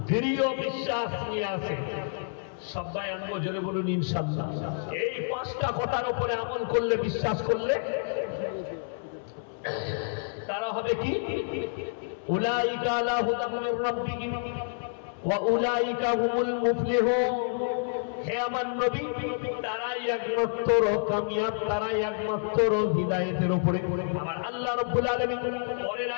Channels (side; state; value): right; silent; 59 dB below the other